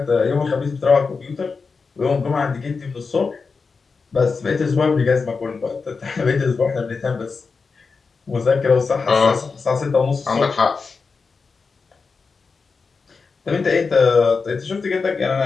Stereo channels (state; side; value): quieter; right; 4.8 dB